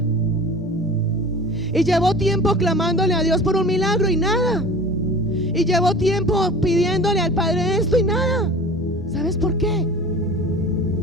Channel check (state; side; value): normal; both; correlation 0.39